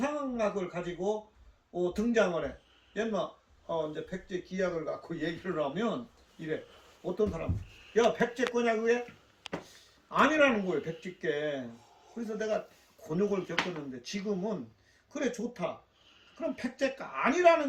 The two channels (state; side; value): identical; both; correlation 1.00